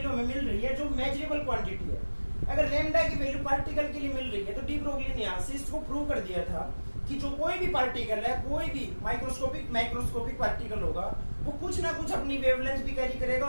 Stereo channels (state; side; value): inverted; both; correlation -1.00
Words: हमें मिल रही है जो मेजरेबल क्वांटिटी है। अगर लैम्डा की वैल्यू पार्टिकल के लिए मिल रही है तो डी ब्रोगली ने यहाँ से इसको प्रूव कर दिया था कि जो कोई भी पार्टिकल है, कोई भी माइक्रोस्कोपिक पार्टिकल होगा, वो कुछ ना कुछ अपनी वेवलेंथ भी कैरी करेगा